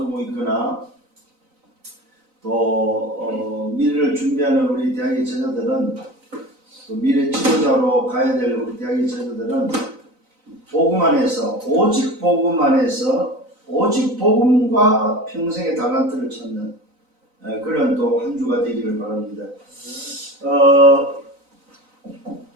있거나 또 미래를 준비하는 우리 대학의 제자들은 또 미래 지도자로 가야 될 우리 대학의 제자들은 복음 안에서 오직 복음 안에서 오직 복음과 평생의 달란트를 찾는 그런 또 한 주가 되기를 바랍니다.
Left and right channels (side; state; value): left; late; 3.9 ms